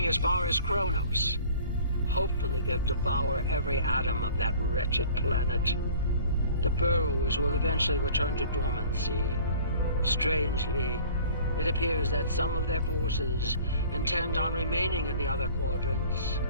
as far as Kronos. Hopefully they'll devour every atom of that wretched planet. The Burrowers will eventually return to dormancy. Strangely, it appears that some of their forces intend on remaining in the other quadrants.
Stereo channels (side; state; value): both; inverted; correlation -0.48